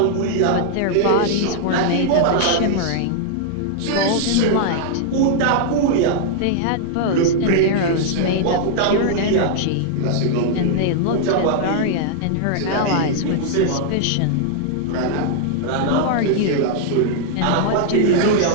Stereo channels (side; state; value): both; different; correlation -0.01